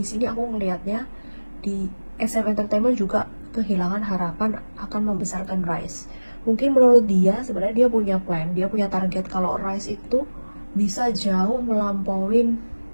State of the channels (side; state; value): both; inverted; correlation -1.00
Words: sini aku melihatnya di SM Entertainment juga kehilangan harapan akan membesarkan Rise. Mungkin menurut dia sebenarnya dia punya plan, dia punya target kalau Rise itu bisa jauh melampauin